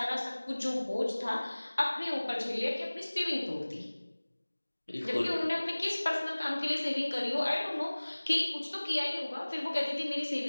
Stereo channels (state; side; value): inverted; both; correlation -1.00